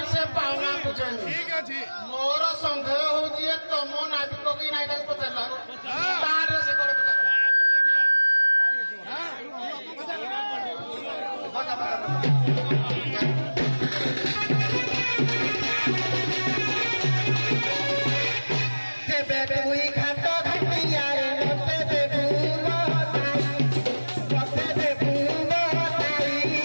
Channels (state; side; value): inverted; both; correlation -1.00